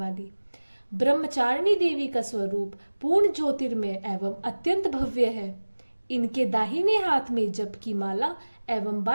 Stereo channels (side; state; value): both; inverted; correlation -1.00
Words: ब्रह्मचारिणी देवी का स्वरूप पूर्ण ज्योतिर्मय एवं अत्यंत भव्य है। इनके दाहिने हाथ में जप की माला एवं